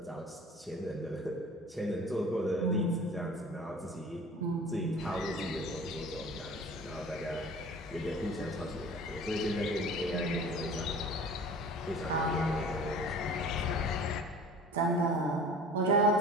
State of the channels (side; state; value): both; normal; correlation 0.43